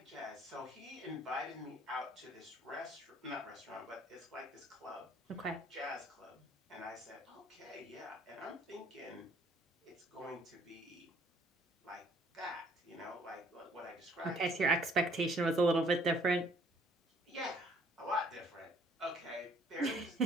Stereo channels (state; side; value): normal; both; correlation 0.60